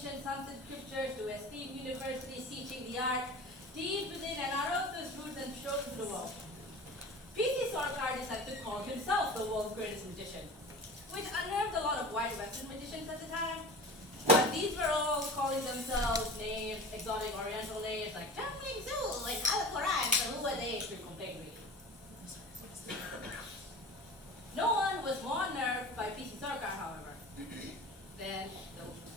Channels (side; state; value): both; normal; correlation 0.37